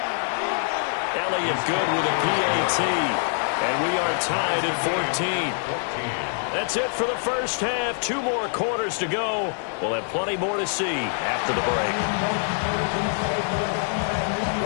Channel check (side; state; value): right; silent; 59 dB below the other